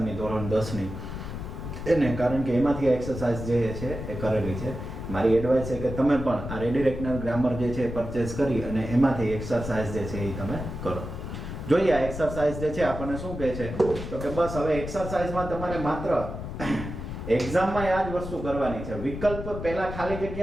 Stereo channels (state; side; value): noise; left; rumble, 7 dB below the sound